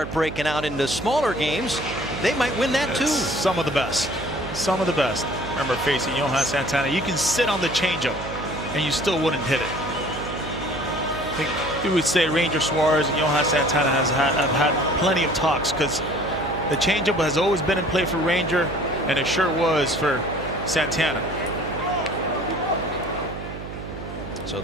breaking out into smaller games, they might win that too. Some of the best. Some of the best. Remember facing Johan Santana, you can sit on the changeup and you still wouldn't hit it. I think we would say Ranger Suarez and Johan Santana have had plenty of talks, because the changeup has always been in play for Ranger, and it sure was for Santana. So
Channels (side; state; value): right; noise; hum, 10 dB below the sound